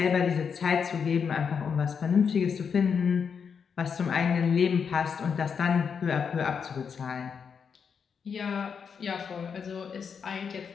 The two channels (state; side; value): quieter; right; 6.5 dB